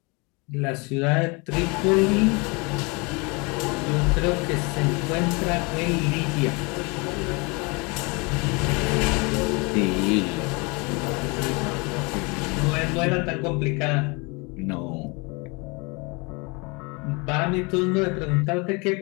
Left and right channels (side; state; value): right; quieter; 29.0 dB